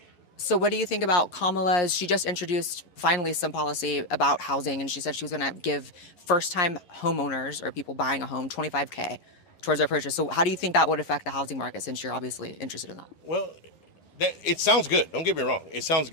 So what do you think about Kamala's? She just introduced finally some policy about housing, and she said she was going to give first-time homeowners or people buying a home $25K towards their purchase. So how do you think that would affect the housing market, since you're obviously interested in that? Well, it sounds good. Don't get me wrong. It sounds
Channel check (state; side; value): late; right; 11 ms